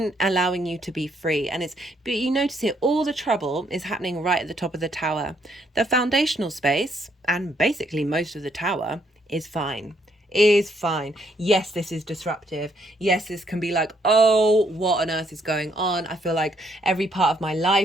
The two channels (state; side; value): normal; both; correlation 0.71